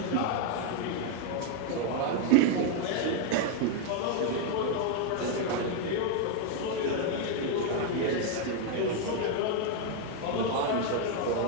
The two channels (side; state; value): both; different; correlation 0.01